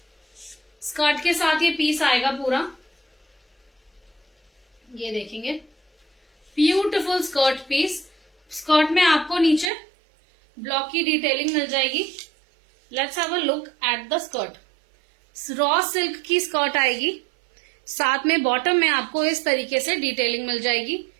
Skirt के साथ ये पीस आएगा पूरा। ये देखेंगे ब्यूटिफुल स्कर्ट पीस। स्कर्ट में आपको नीचे ब्लॉक की डिटेलिंग मिल जाएगी। Let's have a look at the skirt. Raw silk की स्कर्ट आएगी, साथ में बॉटम में आपको इस तरीके से डिटेलिंग मिल जाएगी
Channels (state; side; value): drops out; left; at 9.7 s